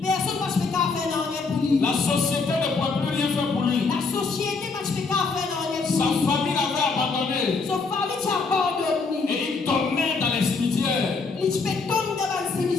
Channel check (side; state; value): right; quieter; 4.4 dB